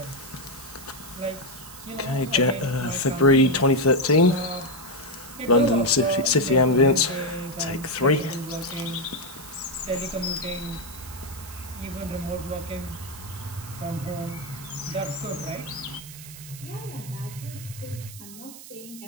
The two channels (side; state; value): right; noise; hiss, 15 dB below the sound